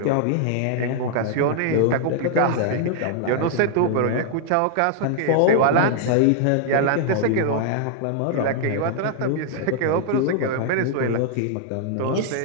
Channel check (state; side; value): different; both; correlation 0.00